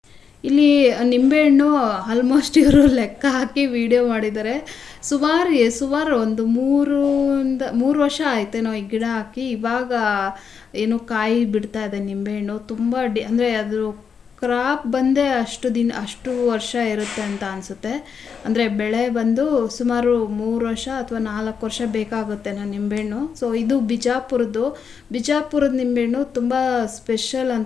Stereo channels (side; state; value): right; quieter; 6.4 dB